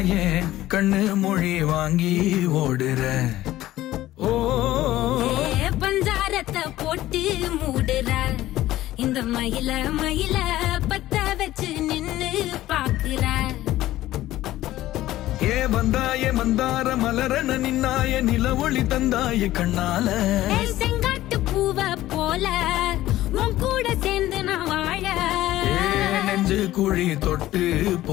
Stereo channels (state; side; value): quieter; right; 15.2 dB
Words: கண்ணு மொழி வாங்கி ஓடுற. ஓ பஞ்சாரத்தை போட்டு மூடுற இந்த மயில மயில பத்த வச்சு நின்னு பாக்குற. ஏ வந்தாய மந்தார மலரன நின்னாய நில ஒளி தந்தாய கண்ணால. செங்காட்டு பூவ போல உன் கூட சேர்ந்து நான் வாழ. நெஞ்சு குழி தொட்டு